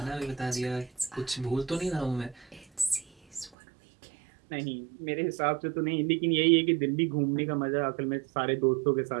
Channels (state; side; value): drops out; left; at 3.5 s